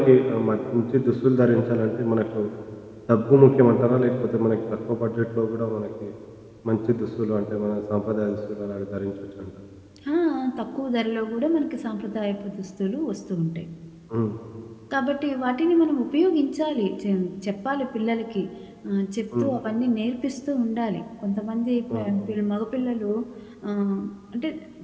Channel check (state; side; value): identical; both; correlation 1.00